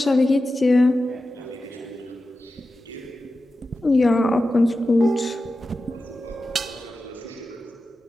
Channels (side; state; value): both; normal; correlation 0.93